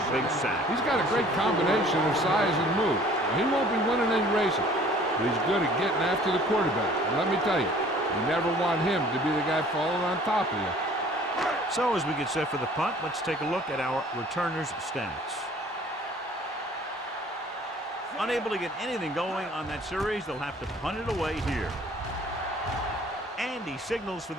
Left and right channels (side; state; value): both; normal; correlation 0.53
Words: big sack. He's got a great combination of size and move. He won't be winning any races, but he's good at getting after the quarterback. And let me tell you, you never want him to be the guy falling on top of you. So as we get set for the punt, let's take a look at our returners' stats. Unable to get anything going on that series, they'll have to punt it away here. And he signals for